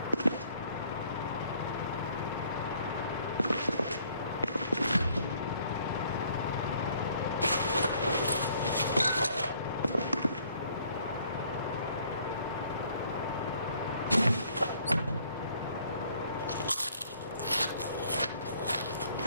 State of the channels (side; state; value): both; inverted; correlation -0.62